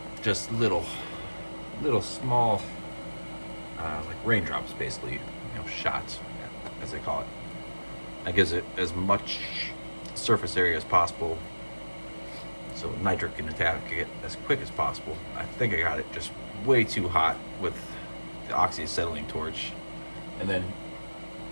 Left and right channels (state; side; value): inverted; both; correlation -1.00